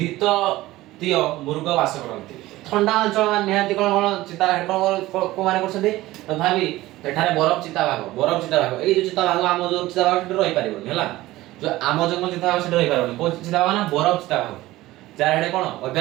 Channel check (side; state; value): left; quieter; 17.3 dB